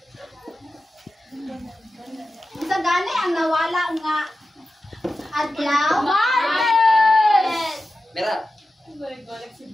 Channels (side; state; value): both; normal; correlation 0.92